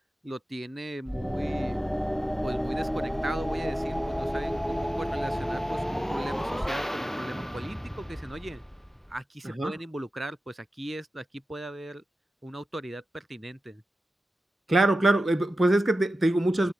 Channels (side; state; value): both; normal; correlation 0.93